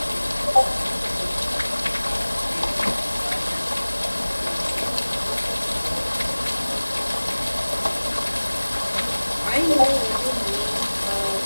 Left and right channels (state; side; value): inverted; both; correlation -1.00